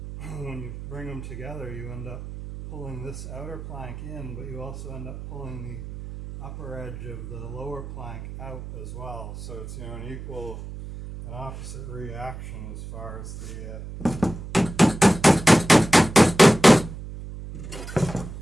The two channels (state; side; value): noise; right; hum, 10 dB below the sound